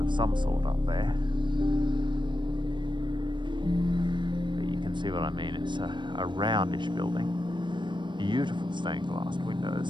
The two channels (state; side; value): late; left; 0.22 ms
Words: some sort up there. But you can see what I mean, it's a roundish building. Beautiful stained glass